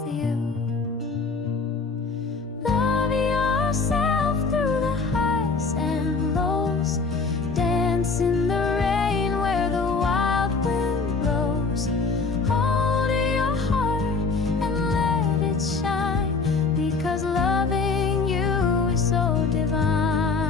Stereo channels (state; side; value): quieter; right; 4.3 dB